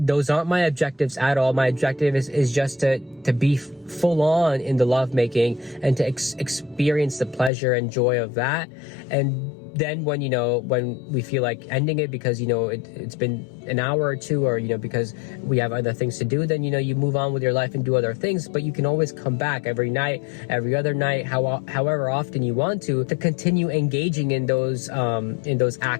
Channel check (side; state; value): right; drops out; at 7.5 s